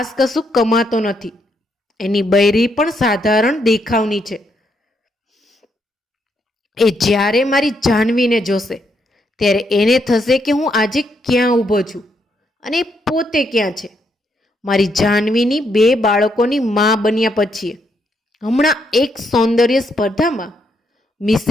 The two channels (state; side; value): normal; both; correlation 0.77